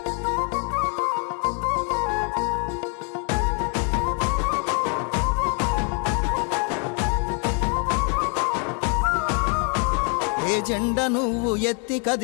ఏ జెండ నువ్వు ఎత్తి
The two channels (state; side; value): quieter; right; 38.3 dB